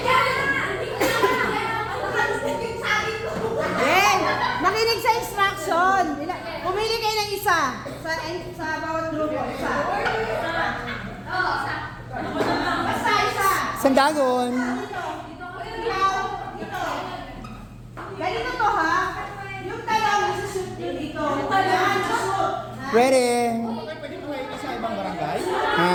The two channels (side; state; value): both; identical; correlation 1.00